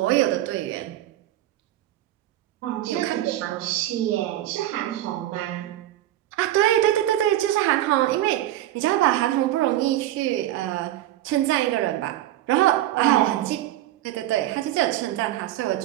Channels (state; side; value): quieter; left; 13.9 dB